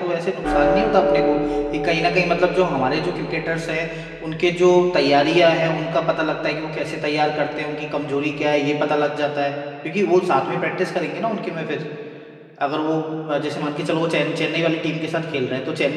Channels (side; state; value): both; identical; correlation 1.00